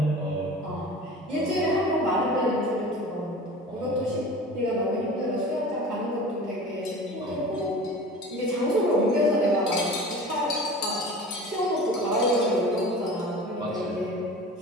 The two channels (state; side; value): normal; both; correlation 0.37